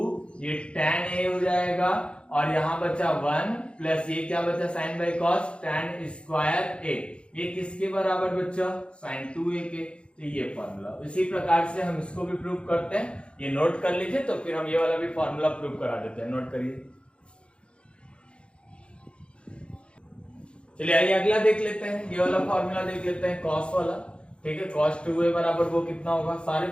ये tan a हो जाएगा और यहाँ बचा 1 प्लस ये क्या बचा sine by cos tan square A, ये किसके बराबर बचा साइन 2a के। तो ये फॉर्मूला इसी प्रकार से हम इसको भी प्रूव करते हैं, ये नोट कर लीजिए, तो फिर हम ये वाला भी फॉर्मूला प्रूव करा देते हैं। नोट करिए। चलिए आइए अगला देख लेते हैं, ये वाला फॉर्मूला देख लेते हैं कॉस वाला। ठीक है, cos 2a बराबर वो कितना होगा, सारे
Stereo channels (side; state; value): right; late; 0.057 ms